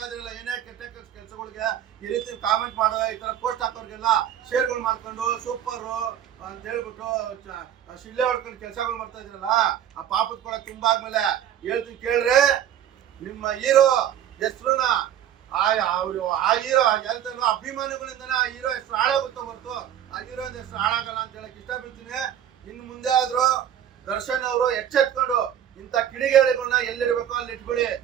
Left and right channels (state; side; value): quieter; left; 10.3 dB